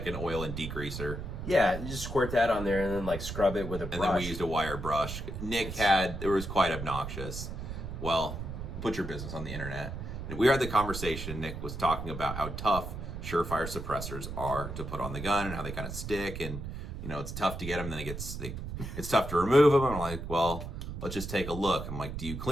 an oil and degreaser. Yeah, you just squirt that on there and then like scrub it with a brush. And then we used a wire brush. It was quite obnoxious. Well, put your business on the internet. We had the conversation. Nick was talking about how tough Surefire suppressors are to put on the gun and how they kind of stick, and you know it's tough to get them. Then it's tough to remove them. And I'm like, well, let's just take a look. I'm like, do you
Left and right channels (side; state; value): right; noise; rumble, 7 dB below the sound